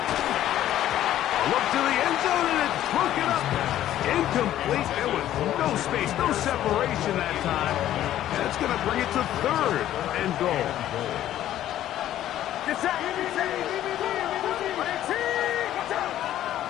Look to the end zone, and it's broken up. Incomplete. There was no space, no separation that time. And it's going to bring it to third and goal.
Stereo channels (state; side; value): quieter; right; 12.5 dB